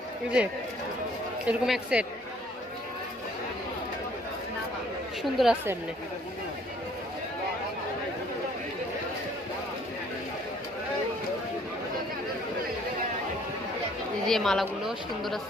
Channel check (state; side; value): normal; both; correlation 0.60